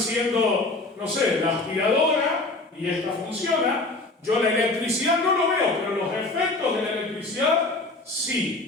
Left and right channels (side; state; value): right; quieter; 3.1 dB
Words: no sé, la aspiradora y esta funciona. Yo la electricidad no lo veo, pero los efectos de la electricidad